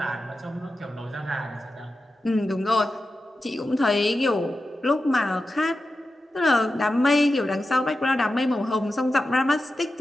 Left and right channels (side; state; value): both; normal; correlation 0.92